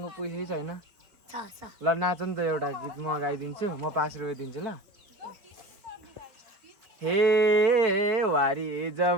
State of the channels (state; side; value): late; left; 4.5 ms